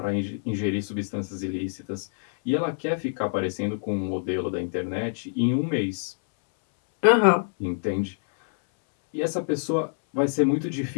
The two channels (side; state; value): right; silent; 59 dB below the other